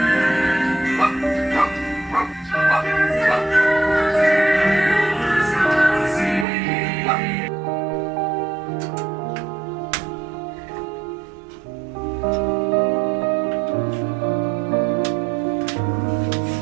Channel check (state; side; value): drops out; left; at 6.5 s